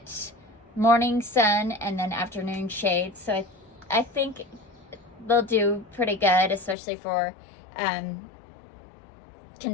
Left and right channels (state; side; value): drops out; right; at 6.8 s